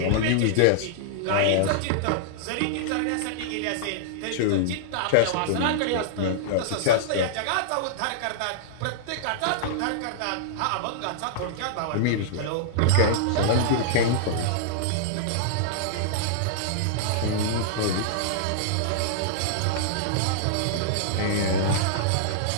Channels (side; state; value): both; different; correlation -0.01